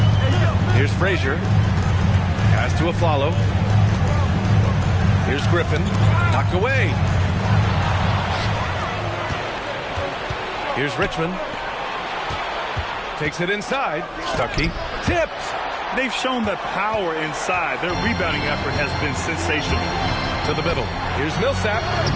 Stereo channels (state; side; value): identical; both; correlation 1.00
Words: Here's Frazier. Pass to Aflalo. Here's Griffin. Knocked away. Here's Richmond. Takes it inside. Stuckey. Tipped. They've shown that power inside. Their rebounding effort has been sensational. To the middle. Here's Millsap.